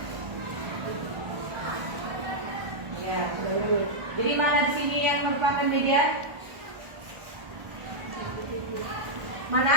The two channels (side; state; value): left; late; 1.4 ms